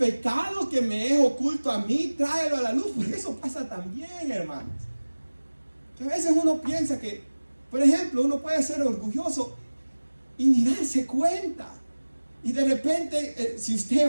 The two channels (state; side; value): inverted; both; correlation -1.00